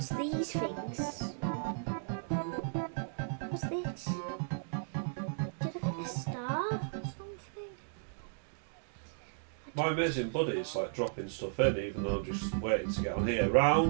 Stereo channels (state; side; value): silent; left; digital silence